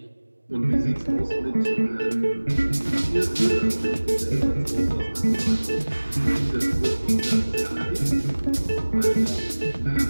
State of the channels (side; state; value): both; inverted; correlation -1.00